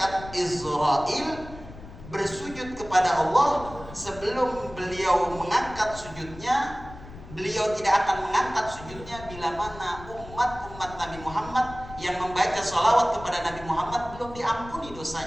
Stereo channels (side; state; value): left; noise; rumble, 15 dB below the sound